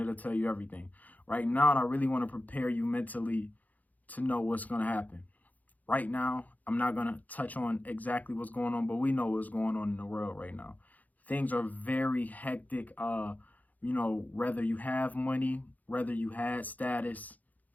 tell you everything. Right now, I really want to prepare you mentally to know what's going to happen. Right now, I'm not going to touch on exactly what's going on, but we know what's going on in the world right now. Things are very hectic. Whether you have money, whether you had status,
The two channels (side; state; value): right; late; 0.079 ms